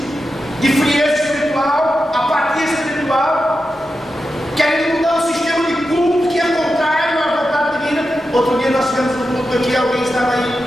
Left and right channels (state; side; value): normal; both; correlation 0.90